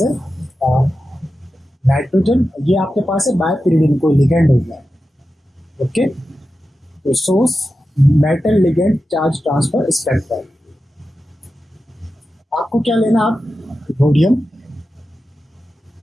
है नाइट्रोजन, ये आपके पास है बायपीरिडिन, कोई लिगेंड हो गया। ओके, तो source metal ligand charge transfer spectrum. आपको क्या लेना, आप रोडियम,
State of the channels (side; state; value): both; normal; correlation 0.92